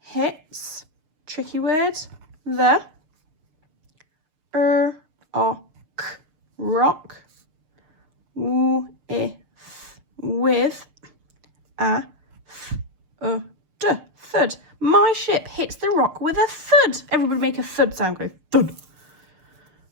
Tricky word, the rock. With a thud. My ship hits the rock with a thud. Everybody make a thud sound. Go thud.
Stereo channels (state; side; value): late; left; 6.7 ms